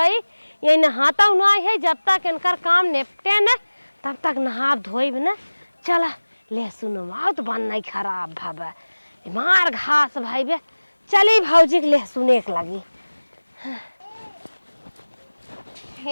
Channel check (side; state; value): both; inverted; correlation -1.00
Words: ये नहाता ना है जब तक इनकर काम निपटे न तब तक नहा धोइब ना। चला लहसुन माओ तो बन नहीं खराब भाबा मार घास भाई बे। चली भौजी के लहसुन एक लगी।